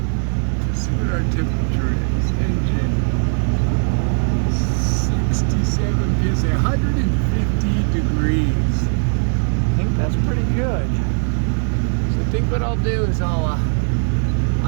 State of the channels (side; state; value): left; silent; 56 dB below the other